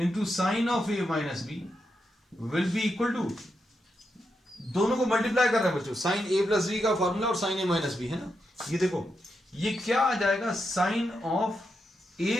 sine of a minus b will be equal to, दोनों को मल्टीप्लाई कर रहे हैं बच्चों, साइन a प्लस बी का फॉर्मूला और साइन a माइनस बी, है ना. ये देखो ये क्या आ जाएगा, sine of a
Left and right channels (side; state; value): both; normal; correlation 0.85